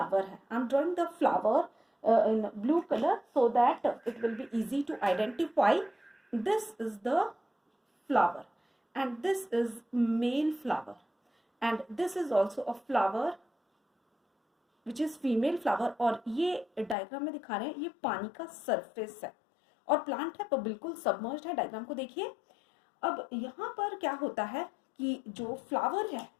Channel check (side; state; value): right; drops out; at 16.9 s